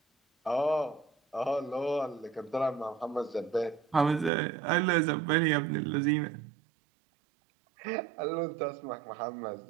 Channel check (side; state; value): left; drops out; at 4.3 s